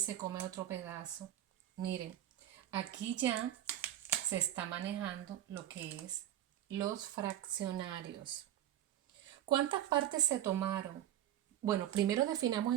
come otro pedazo, miren, aquí ya se está manejando lo que es los fraccionarios. ¿Cuántas partes se tomaron? Bueno, primero definamos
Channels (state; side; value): quieter; left; 12.0 dB